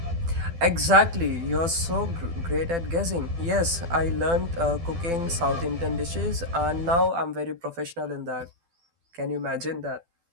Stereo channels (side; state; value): left; late; 12 ms